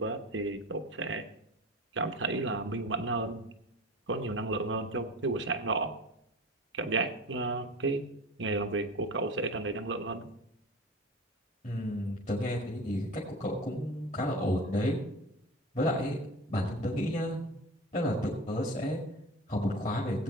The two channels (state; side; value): normal; both; correlation 0.33